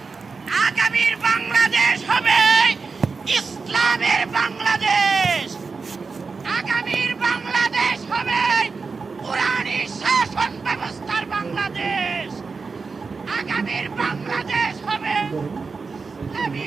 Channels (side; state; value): left; quieter; 4.6 dB